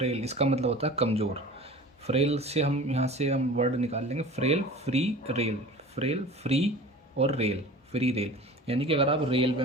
इसका मतलब होता है कमज़ोर। फ्रेल से हम यहाँ से हम वर्ड निकाल लेंगे frail, free, rail. Frail, free और रेल, फ्री रेल। यानी कि अगर आप रेलवे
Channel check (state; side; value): normal; both; correlation 0.40